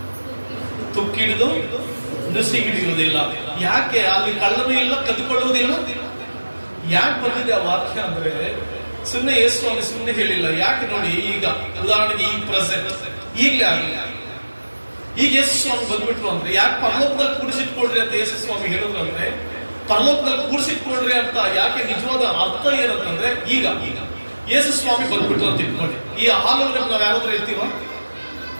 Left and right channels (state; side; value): inverted; both; correlation -1.00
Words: ತುಕ್ಕಿಡಿದು ನುಸಿ ಹಿಡಿಯುವುದಿಲ್ಲ. ಯಾಕೆ? ಅಲ್ಲಿ ಕಳ್ಳನೂ ಇಲ್ಲ, ಕದ್ದುಕೊಳ್ಳುವುದಿಲ್ಲ. ಯಾಕೆ ಬಂದಿದೆ ಆ ವಾಕ್ಯ ಅಂದ್ರೆ, ಸುಮ್ಮನೆ ಯೇಸು ಸ್ವಾಮಿ ಸುಮ್ಮನೆ ಹೇಳಿಲ್ಲ. ಯಾಕೆ ನೋಡಿ, ಈಗ ಉದಾಹರಣೆಗೆ ಈ ಪ್ರೆಸೆಂಟ್ ಈಗಲೇ ಆಗಲಿ, ಈಗ ಯೇಸು ಸ್ವಾಮಿ ಬಂದ್ಬಿಟ್ರು ಅಂದ್ರೆ, ಯಾಕೆ ಪರಲೋಕದಲ್ಲಿ ಕೂಡಿಸಿಟ್ಕೊಳ್ರಿ ಅಂತ ಯೇಸು ಸ್ವಾಮಿ ಹೇಳಿದ್ರು ಅಂದ್ರೆ, ಪರಲೋಕದಲ್ಲಿ ಕೂಡಿಸಿಟ್ಕೊಳ್ರಿ ಅಂತ ಯಾಕೆ ನಿಜವಾದ ಅರ್ಥ ಏನಂತಂದ್ರೆ, ಈಗ ಯೇಸು ಸ್ವಾಮಿ ಬಂದ್ಬಿಟ್ರು ಅಂತ ಇಟ್ಕೊಳ್ಳಿ. ಈ ಹಾಲ್ ಒಳಗಡೆ ನಾವ್ ಯಾರಾದ್ರೂ ಇರ್ತೀವ?